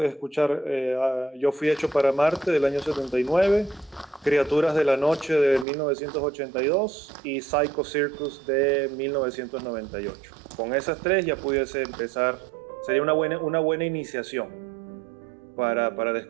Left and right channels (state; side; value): drops out; left; at 5.7 s